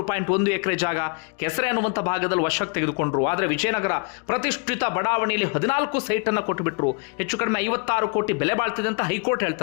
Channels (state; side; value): quieter; right; 32.6 dB